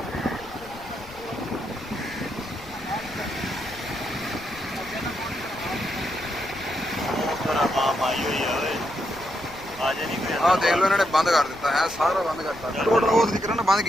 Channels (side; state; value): left; noise; rumble, 22 dB below the sound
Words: ਆਹ ਦੇਖ ਲਓ ਇਹਨਾਂ ਨੇ ਬੰਦ ਕਰ ਦਿੱਤਾ ਹੈ, ਸਾਰਾ ਬੰਦ ਕਰਤਾ ਟੋਟਲ। ਉਹ ਤਰੀਕੇ ਨਾਲ ਬੰਦ